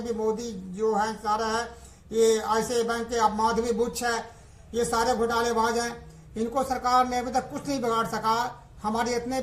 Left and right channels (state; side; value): identical; both; correlation 1.00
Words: भी मोदी जो हैं सारा है, ये ICICI बैंक के, अब माधवी बुच है, ये सारे घोटालेबाज हैं। इनको सरकार ने अभी तक कुछ नहीं बिगाड़ सका। हमारे इतने